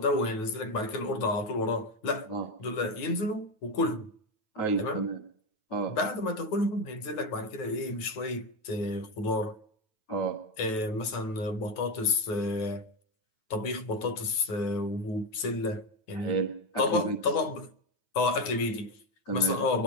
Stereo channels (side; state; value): right; late; 9.2 ms